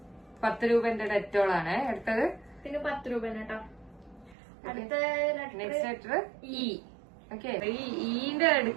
10 രൂപന്റെ ഡെറ്റോളാണ് എടുത്തത്. പിന്നെ 10 രൂപ കേട്ടോ. അടുത്ത നെക്സ്റ്റ് ലെറ്റർ ഇ. ഓക്കെ, ഈ ഈന്റെ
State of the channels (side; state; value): left; drops out; at 4.4 s